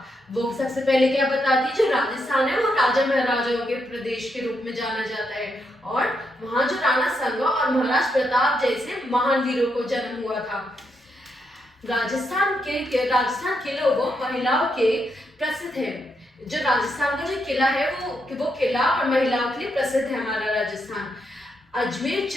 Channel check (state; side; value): normal; both; correlation 0.80